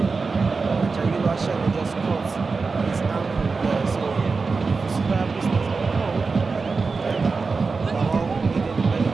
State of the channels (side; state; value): left; quieter; 4.4 dB